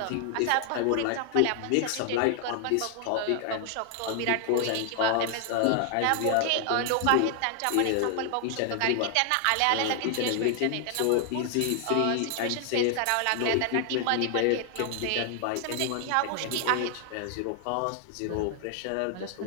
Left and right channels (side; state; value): both; different; correlation 0.00